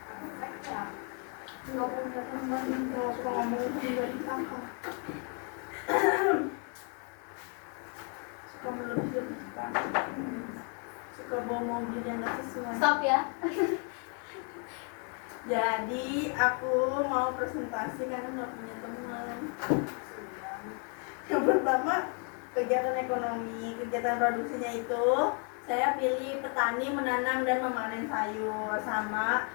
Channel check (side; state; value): right; quieter; 39.5 dB